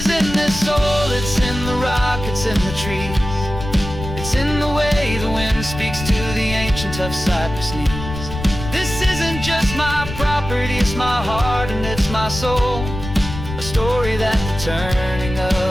in this soil, it's in the rock, it's in the trees, it's in the way the wind speaks to the ancient tough cypress knees. This isn't just my property, it's my heart and it's my soul, a story that the turning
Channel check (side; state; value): left; noise; rumble, 9 dB below the sound